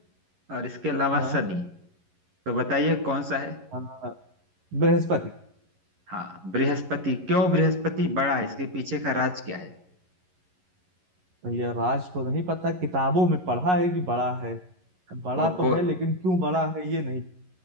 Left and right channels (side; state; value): left; late; 11 ms